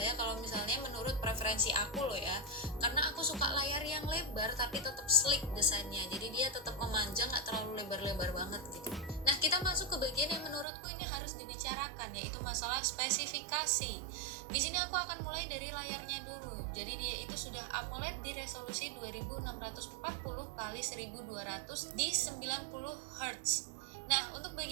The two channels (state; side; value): drops out; left; at 10.7 s